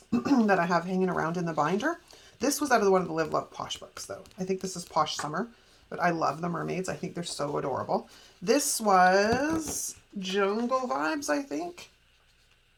that I have hanging around in the binder. This was out of one of the Live Love Posh books, though. I think this is Posh Summer, but I love the mermaids. I think they're so adorable. This was Jungle Vibes, I think.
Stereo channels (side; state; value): both; identical; correlation 1.00